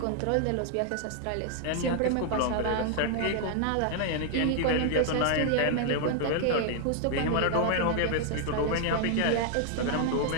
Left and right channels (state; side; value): different; both; correlation 0.00